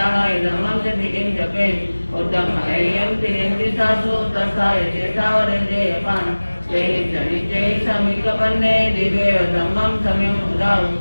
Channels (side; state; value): both; inverted; correlation -1.00